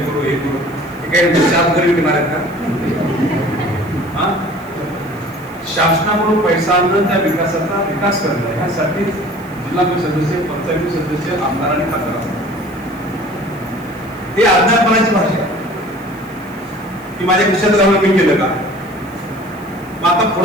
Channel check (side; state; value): left; noise; hiss, 25 dB below the sound